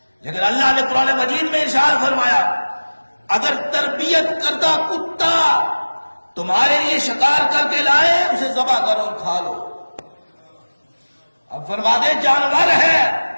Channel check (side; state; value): both; inverted; correlation -1.00